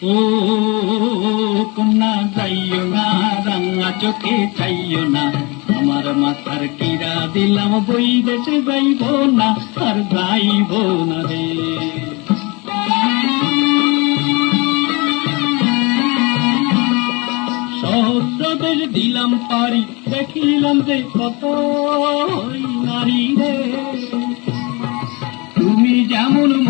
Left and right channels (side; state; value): right; quieter; 27.4 dB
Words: ও কন্যা যাইও না, রাঙা চোখে চাইও না, আমার মাথার কিরা দিলাম বই দেশে যাইব না, আর যাইব না রে। সহস্র দেশ দিলাম পারি, দেখিলাম যে কত নারী রে, তুমি যেমন